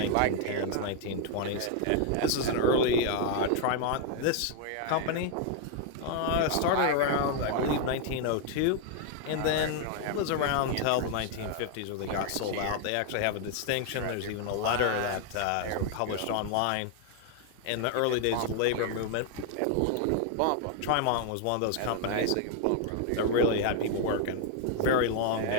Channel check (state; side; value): different; both; correlation 0.00